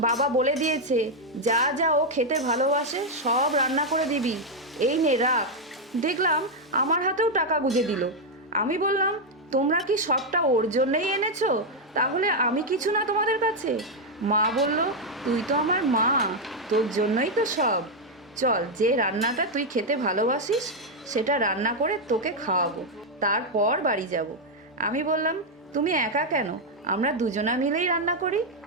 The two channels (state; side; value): normal; both; correlation 0.01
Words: বাবা বলে দিয়েছে যা যা ও খেতে ভালোবাসে সব রান্না করে দিবি, এই নে রাখ। দেখলাম আমার হাতেও টাকা গুঁজে দিল। আমি বললাম, তোমরা কি সবটা ওর জন্যই এনেছো? তাহলে আমি কিছু না তোমাদের কাছে? মা বলল, তুই তো আমার মা, তোর জন্যই তো সব। চল, যে রান্নাটা তুই খেতে ভালোবাসিস সেটা রান্না করে তোকে খাওয়াবো, তারপর বাড়ি যাব। আমি বললাম, তুমি একা কেন, আমরা দুজনা মিলেই রান্না করি।